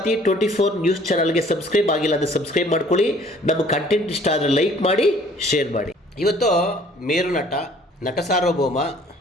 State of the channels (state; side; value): normal; both; correlation 0.56